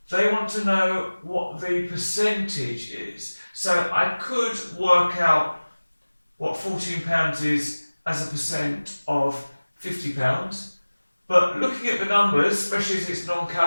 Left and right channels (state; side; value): inverted; both; correlation -1.00